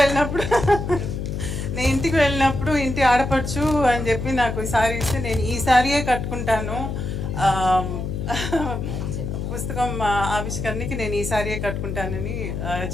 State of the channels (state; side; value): noise; left; hum, 4 dB below the sound